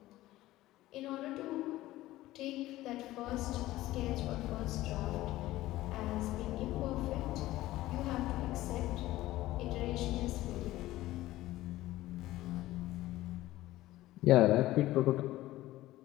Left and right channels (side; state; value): right; quieter; 16.3 dB